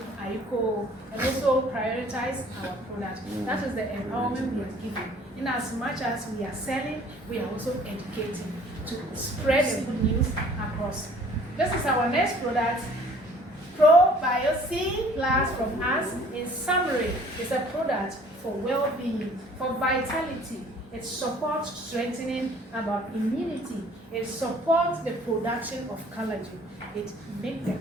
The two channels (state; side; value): normal; both; correlation 0.54